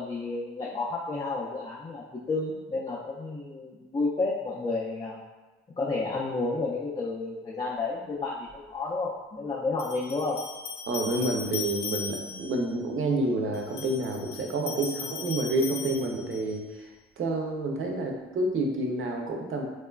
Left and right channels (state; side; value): normal; both; correlation 0.47